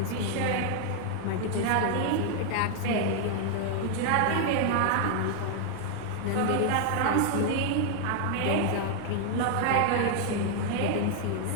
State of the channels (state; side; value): different; both; correlation 0.00